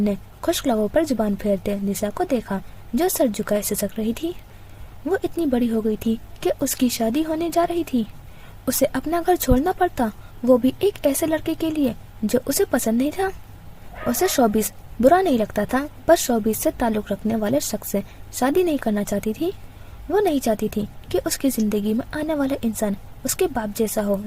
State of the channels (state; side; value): identical; both; correlation 1.00